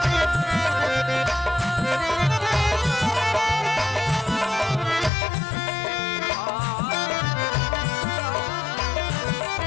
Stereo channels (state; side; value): drops out; right; at 5.1 s